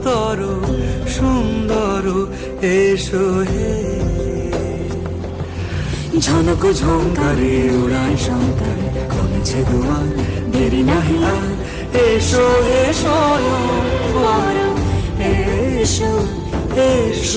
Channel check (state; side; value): identical; both; correlation 1.00